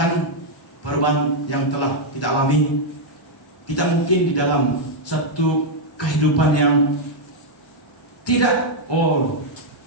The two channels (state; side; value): normal; both; correlation -0.02